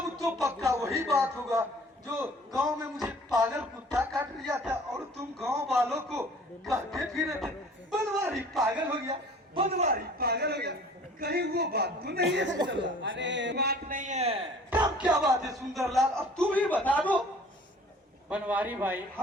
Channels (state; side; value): normal; both; correlation 0.50